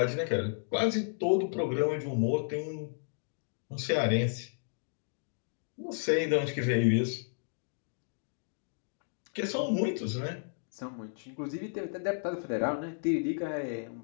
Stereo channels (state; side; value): silent; right; digital silence